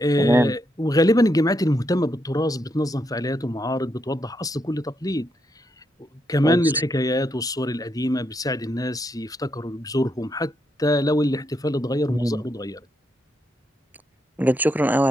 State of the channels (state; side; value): normal; both; correlation 0.80